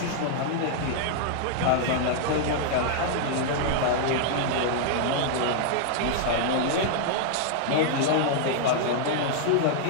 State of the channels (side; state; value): both; different; correlation -0.01